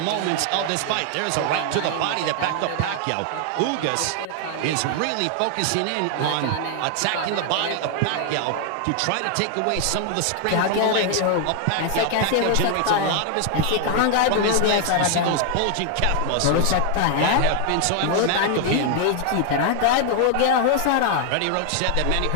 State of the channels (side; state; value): both; different; correlation 0.00